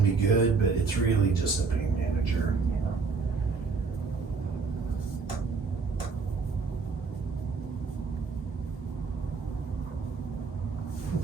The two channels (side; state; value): left; quieter; 4.7 dB